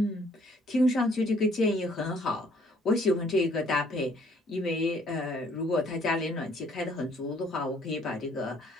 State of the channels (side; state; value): both; normal; correlation 0.62